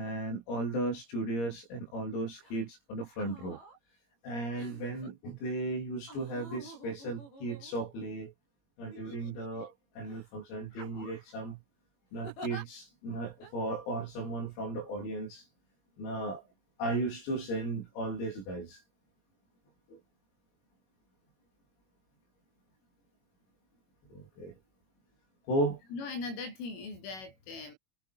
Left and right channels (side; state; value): right; late; 21 ms